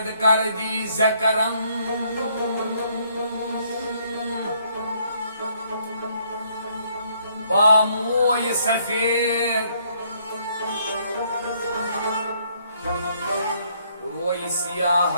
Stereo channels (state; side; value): inverted; both; correlation -0.68